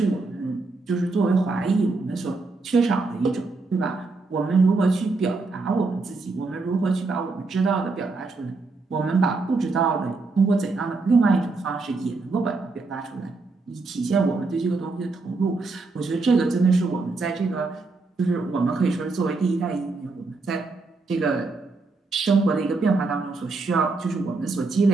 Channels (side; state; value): left; quieter; 3.7 dB